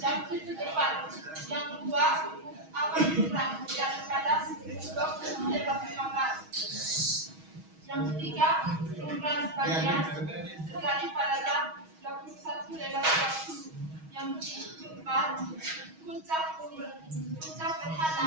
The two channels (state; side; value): late; left; 6.3 ms